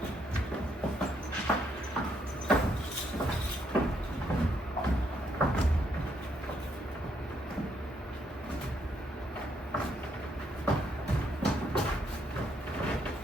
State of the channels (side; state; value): both; normal; correlation 0.74